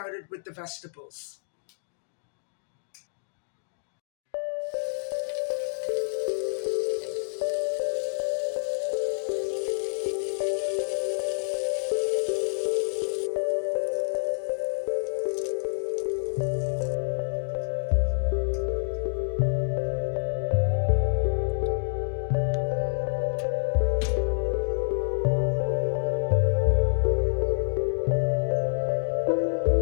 with the vegetables.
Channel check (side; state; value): right; silent; digital silence